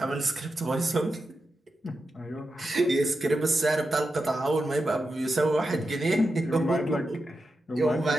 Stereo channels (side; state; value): both; normal; correlation 0.89